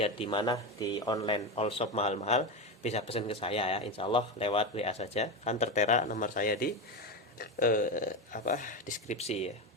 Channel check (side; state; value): both; normal; correlation 0.17